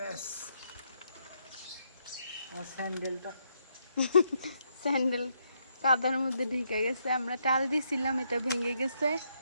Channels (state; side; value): inverted; both; correlation -0.77